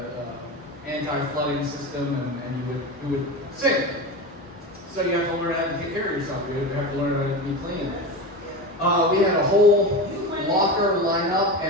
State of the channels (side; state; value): both; normal; correlation 0.24